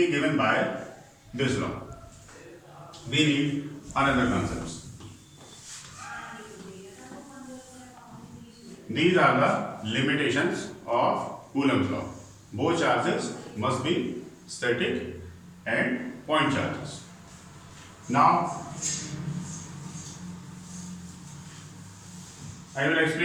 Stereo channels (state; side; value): identical; both; correlation 1.00